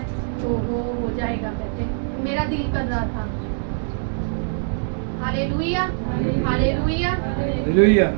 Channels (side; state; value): left; silent; digital silence